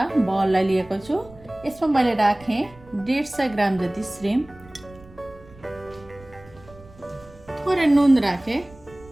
बललाई लिएको छु। यसमा मैले राखेँ 150 ग्राम जति श्रिम्प, थोरै नुन राखेँ,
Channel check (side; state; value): right; noise; rumble, 23 dB below the sound